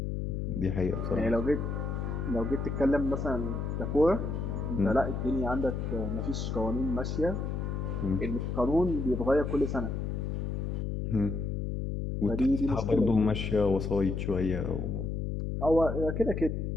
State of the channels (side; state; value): left; noise; hum, 2 dB below the sound